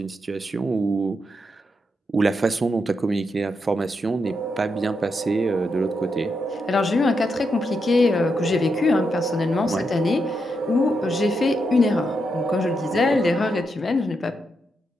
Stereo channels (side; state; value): both; normal; correlation 0.83